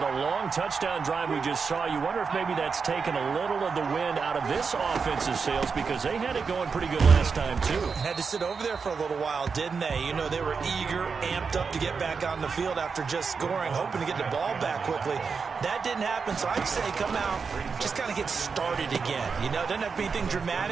long touchdown drive we just saw, you wonder if maybe that's taken a little of the wind out of this offensive sails because they had it going pretty good last time, too. Had to sit over there for a little while, didn't they? You know, they were eager, amped up to get back on the field after just scoring, hoping to get the ball back quickly. That didn't happen, so I'd say come out, just kind of get started again. You know, doesn't have to be anything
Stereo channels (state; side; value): quieter; left; 5.4 dB